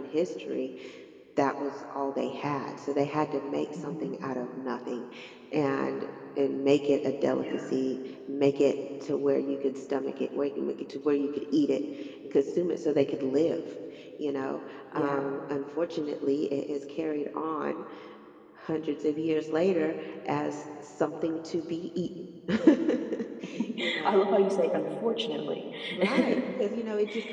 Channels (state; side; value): identical; both; correlation 1.00